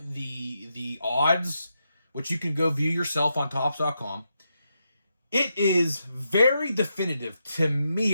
the odds, which you can go view yourself on Topps.com, it is very definitive, to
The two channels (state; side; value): inverted; both; correlation -0.84